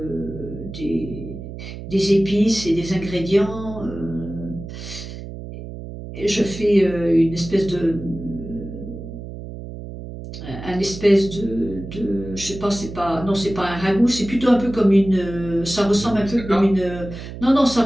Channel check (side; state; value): right; noise; hum, 11 dB below the sound